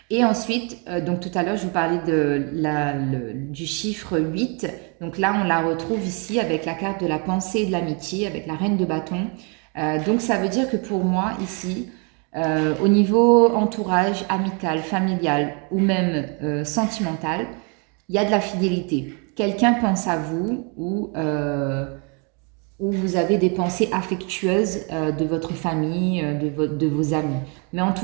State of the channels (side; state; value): left; quieter; 35.1 dB